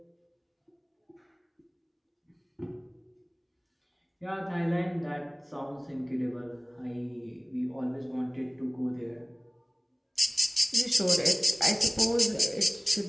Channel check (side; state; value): both; identical; correlation 1.00